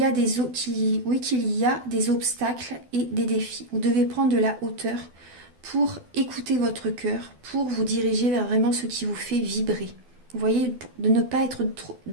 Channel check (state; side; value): late; left; 12 ms